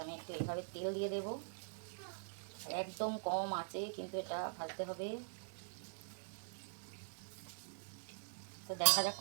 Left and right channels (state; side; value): silent; left; digital silence